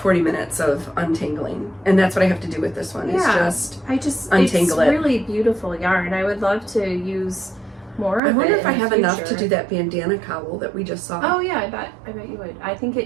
40 minutes of untangling. And that's what I have to do with this one, is just untangle it's it. really beautiful yarn. I would love to use more of it. I wonder if I in the have enough to future. do that bandana cowl that we just saw. Oh yeah, I bet you would. I think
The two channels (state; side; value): drops out; left; at 8.2 s